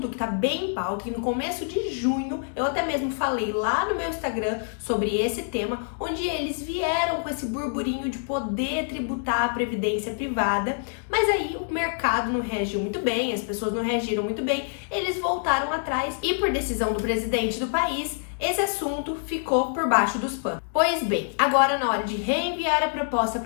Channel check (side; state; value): right; silent; digital silence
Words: que está bem em pauta, e no começo de junho eu até mesmo falei lá no meu Instagram sobre esse tema, onde eles vieram com esse burburinho de poder tributar a previdência privada, mas aí o mercado não reagiu muito bem, as pessoas não reagiram muito bem, eles voltaram atrás e por decisão do presidente do país, esse assunto ficou por baixo dos panos. Pois bem, agora na hora de reenviar a proposta